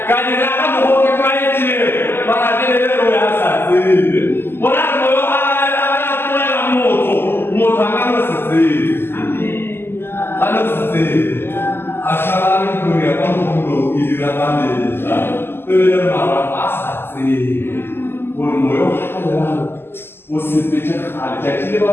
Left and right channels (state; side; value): late; right; 0.11 ms